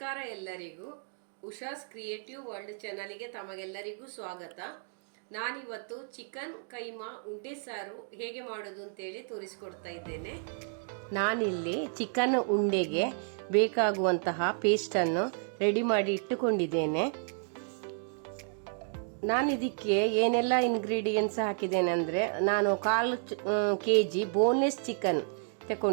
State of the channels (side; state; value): left; silent; 57 dB below the other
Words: ಎಲ್ಲರಿಗೂ. Usha's creative world ಚಾನಲ್ಗೆ ತಮಗೆಲ್ಲರಿಗೂ ಸ್ವಾಗತ. ನಾನಿವತ್ತು ಚಿಕನ್ ಕೈಮಾ ಉಂಡೆ ಸಾರು ಹೇಗೆ ಮಾಡೋದು ಅಂತೇಳಿ ತೋರಿಸ್ಕೊಡ್ತಾ ಇದ್ದೇನೆ. ನಾನಿಲ್ಲಿ ಚಿಕನ್ ಉಂಡೆಗೆ ಬೇಕಾಗುವಂತಹ ಪೇಸ್ಟನ್ನು ರೆಡಿ ಮಾಡಿ ಇಟ್ಟುಕೊಂಡಿದ್ದೇನೆ. ನಾನು ಇದಕ್ಕೆ ಏನೆಲ್ಲ ಇಂಗ್ರೀಡಿಯೆಂಟ್ಸ್ ಹಾಕಿದ್ದೇನೆ ಅಂದರೆ, ನಾನು 1/4 kg ಬೋನ್ಲೆಸ್ ಚಿಕನ್